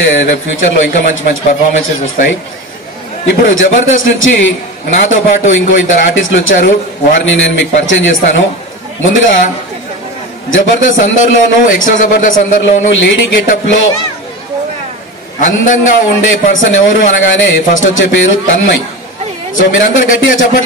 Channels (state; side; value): normal; both; correlation 0.26